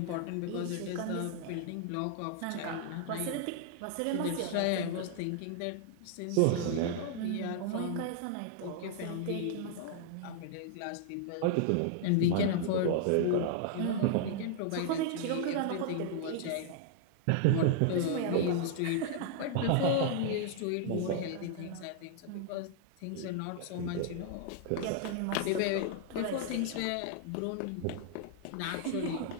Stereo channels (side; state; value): both; different; correlation -0.01